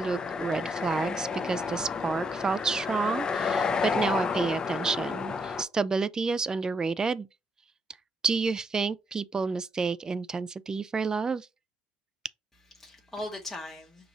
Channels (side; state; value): both; normal; correlation 0.77